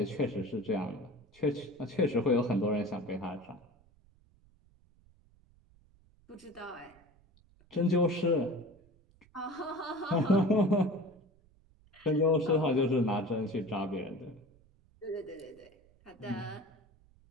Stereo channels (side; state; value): right; noise; rumble, 30 dB below the sound